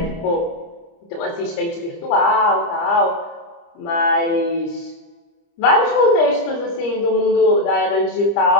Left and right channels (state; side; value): late; right; 30 ms